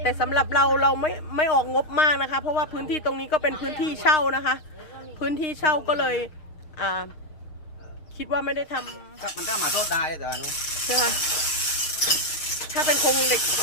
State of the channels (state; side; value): late; right; 6.4 ms